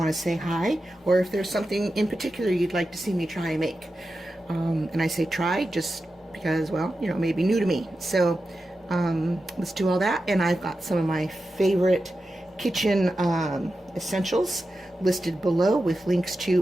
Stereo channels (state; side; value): normal; both; correlation 0.91